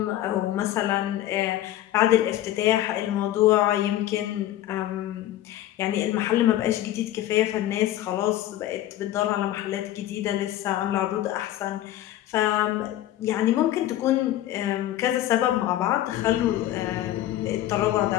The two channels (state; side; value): quieter; right; 13.6 dB